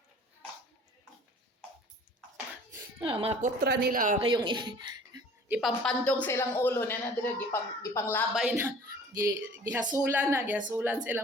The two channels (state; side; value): normal; both; correlation 0.49